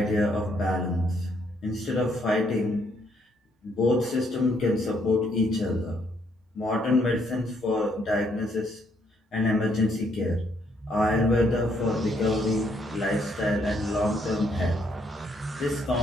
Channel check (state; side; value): normal; both; correlation 0.71